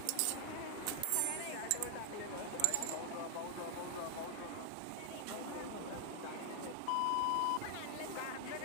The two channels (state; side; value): different; both; correlation 0.00